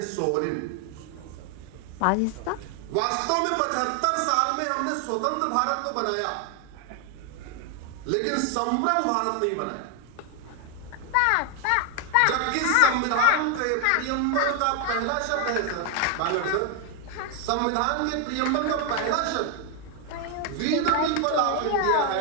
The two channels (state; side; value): different; both; correlation 0.01